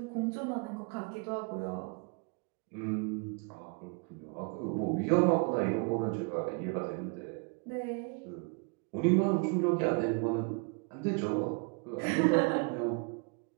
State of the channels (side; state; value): left; quieter; 33.5 dB